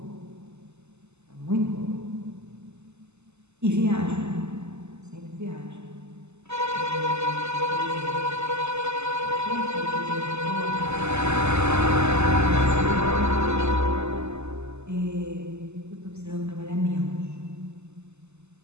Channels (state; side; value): late; left; 0.82 ms